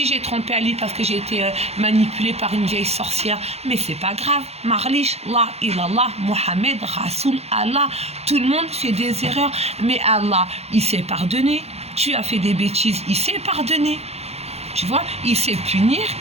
j'ai trompé Ali parce que j'ai été manipulée par une vieille sorcière, mais c'est pas grave, Marlish, La ilallah, Mohamed, Rasoul, Allah, tout le monde fait des erreurs, mais Allah il s'est pardonné. tu as fait des bêtises, il sait pardonner. Tu vois, il sait punir,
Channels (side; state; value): left; late; 0.30 ms